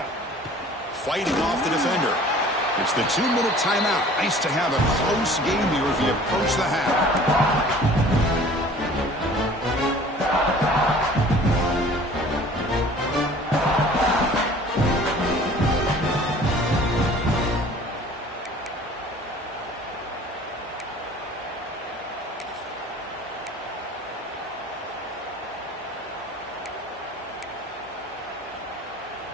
Fighting off the defender. It's the 2-minute timeout. Nice to have a close game here as we approach the half.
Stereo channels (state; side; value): normal; both; correlation 0.48